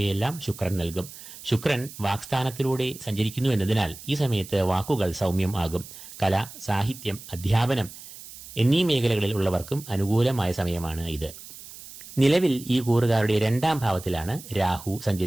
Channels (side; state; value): right; noise; hiss, 16 dB below the sound